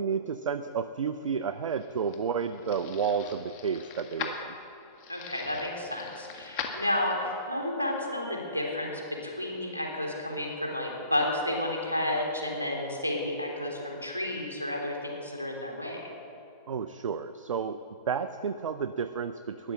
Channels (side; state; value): both; inverted; correlation -0.44